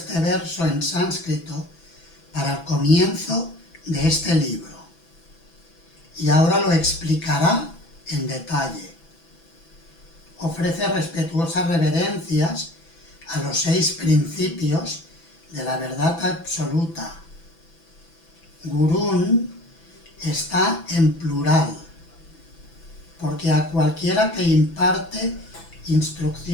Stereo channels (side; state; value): right; late; 6.0 ms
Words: verso en sánscrito para el comienzo de este libro y ahora lo explicará en detalle. Ofrece respetuosas reverencias a los 6 principios de la verdad absoluta. Gurún está en plural, porque a cualquiera que imparte